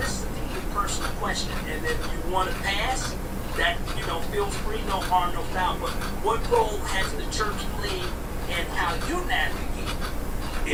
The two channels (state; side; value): identical; both; correlation 1.00